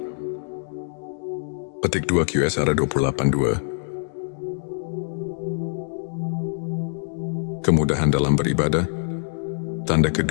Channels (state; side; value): silent; right; digital silence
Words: Petik 2 QS 28:2. Kemudahan dalam beribadah. Tanda